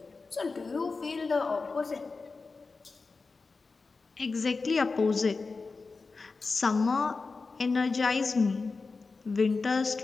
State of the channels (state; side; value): quieter; right; 4.1 dB